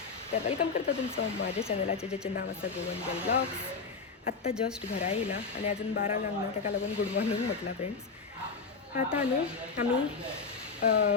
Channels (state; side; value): quieter; right; 4.7 dB